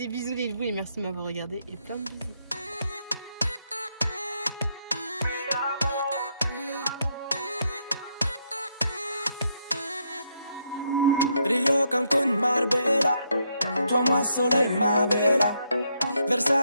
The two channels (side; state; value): both; inverted; correlation -0.76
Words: bisous les loups et merci de m'avoir regardé. Et plein de bisous. Rio, Cancun, Marbella. Toi, moi, soleil, ma bella.